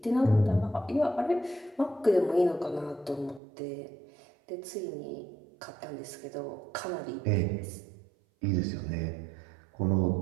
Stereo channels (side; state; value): left; drops out; at 3.4 s